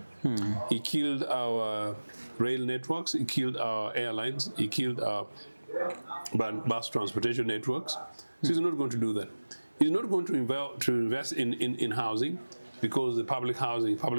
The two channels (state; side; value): inverted; both; correlation -1.00